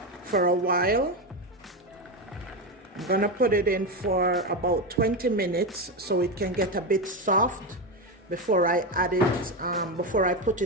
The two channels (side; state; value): both; normal; correlation 0.14